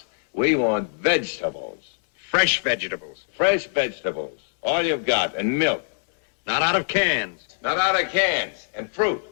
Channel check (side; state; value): right; silent; 63 dB below the other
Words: We want vegetables. Fresh vegetables. Fresh vegetables. All you've got. And milk. Not out of cans. Not out of cans. And fruit.